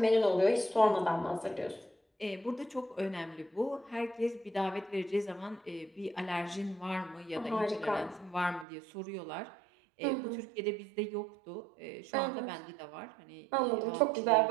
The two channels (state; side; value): drops out; left; at 8.7 s